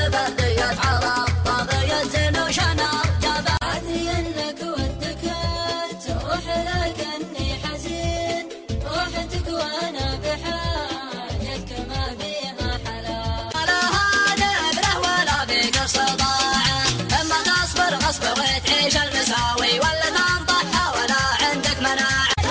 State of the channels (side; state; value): both; identical; correlation 1.00